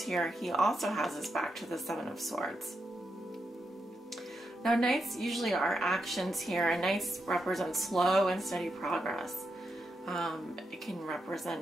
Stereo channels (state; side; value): normal; both; correlation 0.84